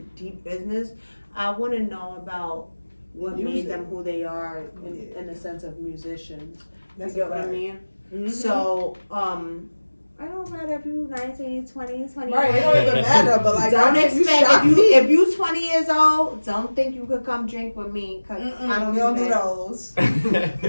deep business. I want to know about what made them who they are in the sense of musicians. That's you get what I right. mean? Mhm. So, I don't matter if you 19, 20, 20. Right, it don't even matter, but like, Don't I expect if you 20 years old, don't think you could come drink with me, cause I don't, do those.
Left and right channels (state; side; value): inverted; both; correlation -1.00